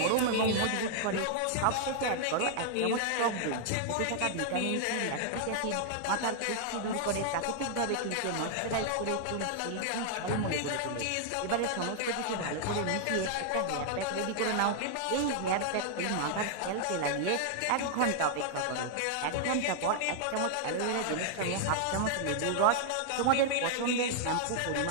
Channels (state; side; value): different; both; correlation 0.00